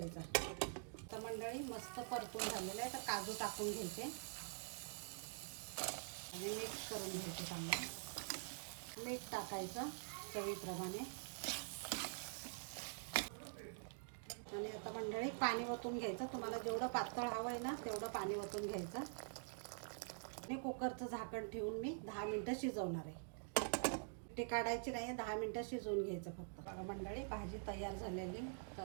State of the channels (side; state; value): left; silent; digital silence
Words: तर मंडळी मस्त परतून झालेलं आहे. तर काजू टाकून घ्यायचे आणि मिक्स करून घ्यायचं चांगलं. मीठ टाकायचं चवीप्रमाणे. आणि आता मंडळी पाणी ओतून घ्यायचं. तुम्हाला जेवढं पातळ हवं आहे ना तेवढं पाणी ओतून घ्यायचं. आणि कुकरचं झाकण ठेवून मी 10 मिनटं शिजवणार आहे. ते काढायची नाही, 10 मिनटं शिजवून घ्यायचं फक्त. बघा मंडळी भाजी तयार झालेली.